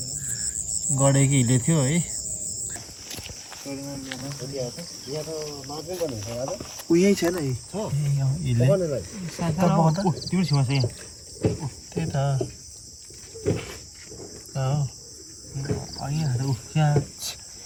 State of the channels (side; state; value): both; identical; correlation 1.00